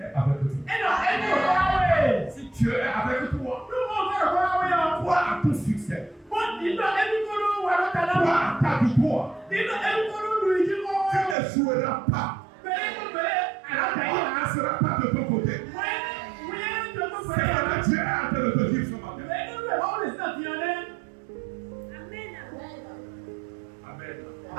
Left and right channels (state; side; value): drops out; left; at 11.4 s